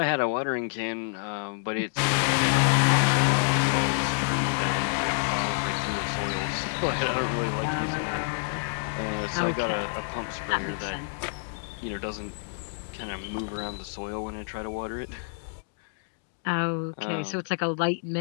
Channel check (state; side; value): silent; right; digital silence